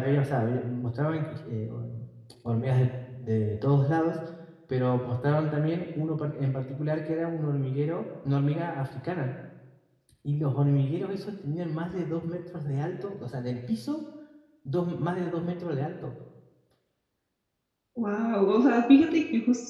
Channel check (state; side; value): identical; both; correlation 1.00